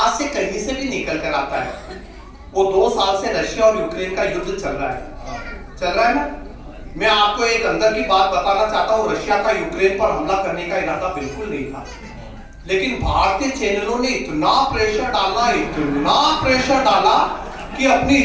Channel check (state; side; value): identical; both; correlation 1.00